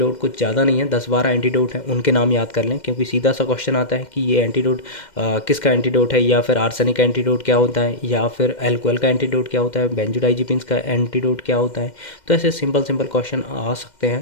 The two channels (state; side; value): late; right; 2.1 ms